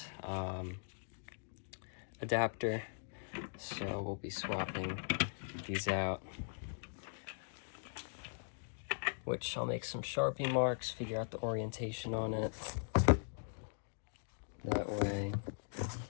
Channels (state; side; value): silent; right; digital silence